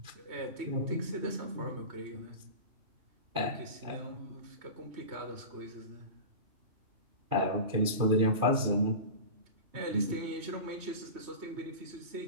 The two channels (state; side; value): late; left; 2.5 ms